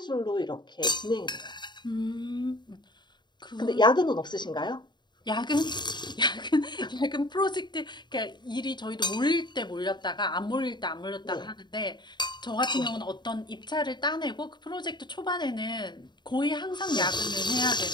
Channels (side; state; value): right; late; 0.21 ms